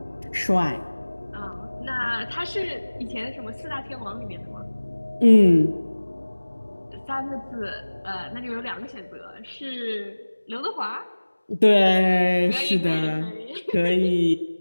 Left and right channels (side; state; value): both; inverted; correlation -1.00